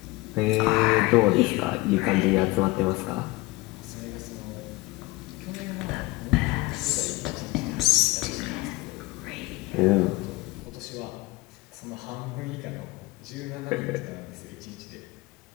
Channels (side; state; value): right; quieter; 20.8 dB